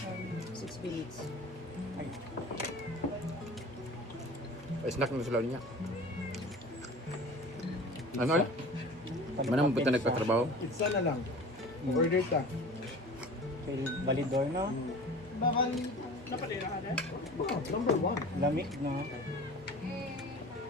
6 minutes. Ay. Snack na sila niya. Ano ulit? Manang punta nagpatrabaho? Pizza na lang. Order ka. Kay Balidor no? Napadira ka na? Oh, number 1. Lamig no?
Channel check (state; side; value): normal; both; correlation 0.40